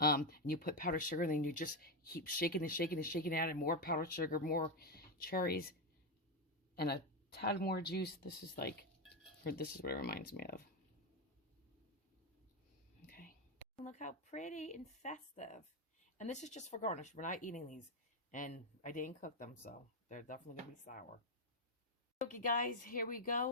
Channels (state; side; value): normal; both; correlation 0.07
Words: you put powdered sugar, and then you just keep shaking and shaking and shaking, adding more powdered sugar, more cherries, and a tad more juice. This is what it reminds me of. Okay. Look how pretty and festive. And this is just for garnish. We're not eating these. And I didn't cook them, so they're definitely going to be sour. Okay, guys, here we